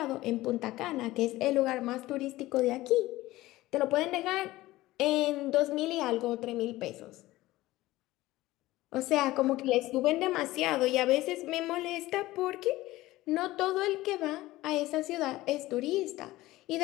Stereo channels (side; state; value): right; quieter; 17.6 dB